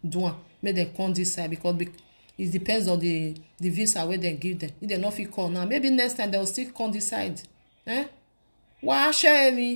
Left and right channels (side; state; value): both; inverted; correlation -1.00